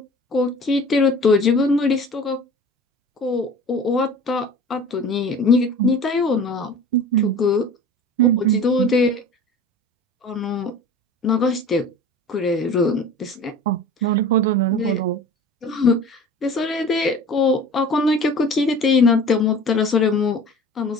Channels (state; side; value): normal; both; correlation 0.41